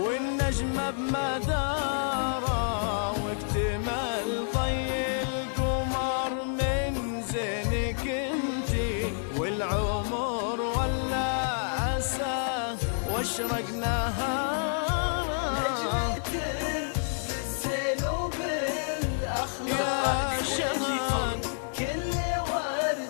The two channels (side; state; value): right; silent; digital silence